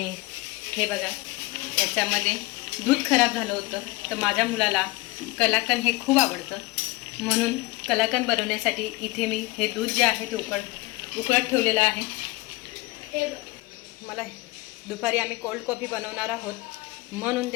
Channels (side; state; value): right; quieter; 21.5 dB